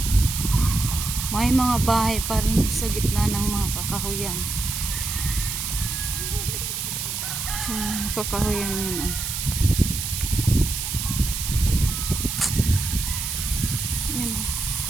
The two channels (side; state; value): right; noise; hiss, 4 dB below the sound